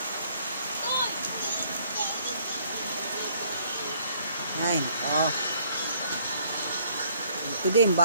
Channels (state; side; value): inverted; both; correlation -0.64